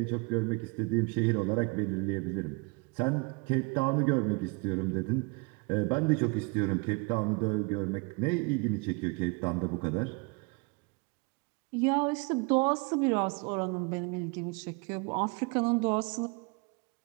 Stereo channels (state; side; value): quieter; left; 30.7 dB